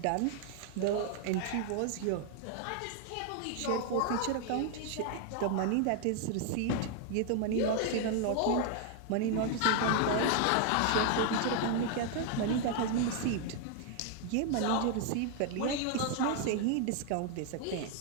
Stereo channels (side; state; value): both; different; correlation 0.00